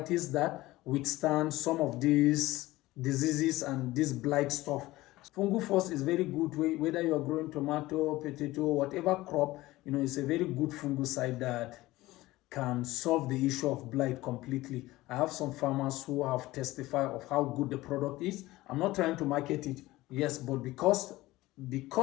that withstand some of these diseases and this blight stuff, Fungufos is very good way, whether you are growing tomato, potato, whatever crop, it's a very good fungicide that can solve the issue of blight completely. I have some farmers who have testified of how good the product is. I'm not trying to market it, yes, but because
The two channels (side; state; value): right; quieter; 18.2 dB